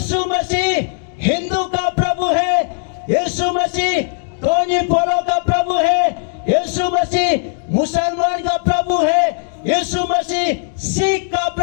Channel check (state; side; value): silent; right; digital silence